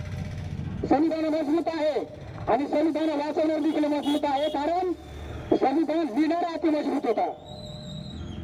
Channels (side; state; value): both; identical; correlation 1.00